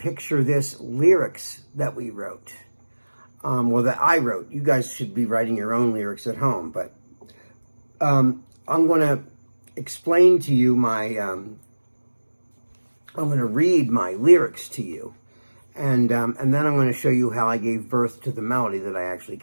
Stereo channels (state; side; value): inverted; both; correlation -1.00